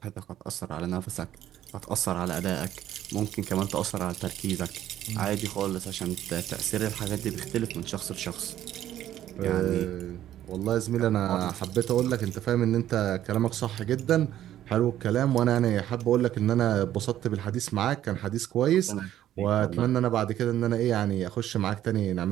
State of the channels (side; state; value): left; quieter; 12.2 dB